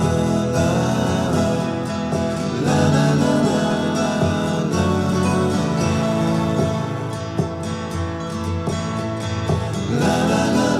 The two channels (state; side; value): identical; both; correlation 1.00